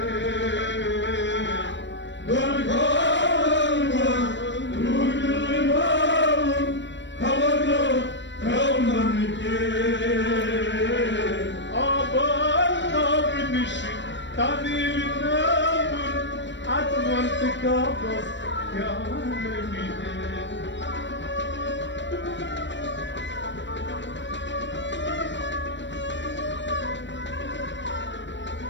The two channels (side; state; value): right; late; 0.53 ms